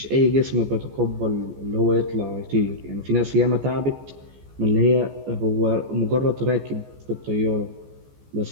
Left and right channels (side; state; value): left; late; 14 ms